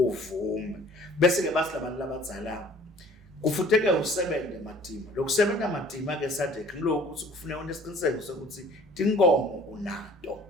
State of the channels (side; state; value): both; normal; correlation 0.51